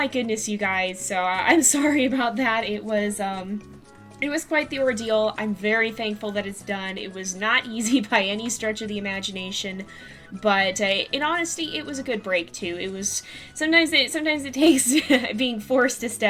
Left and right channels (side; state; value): both; identical; correlation 1.00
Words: goodness, you guys, so I'm sorry about that. It was quite the ordeal. I'm very thankful that it's done. It was not easy by any stretch of the imagination, but in honesty, it was a good break too. It was sometimes it takes being forced to